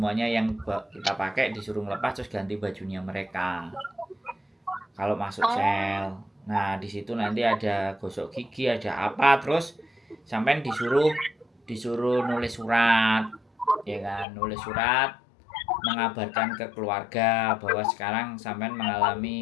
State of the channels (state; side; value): drops out; right; at 14.2 s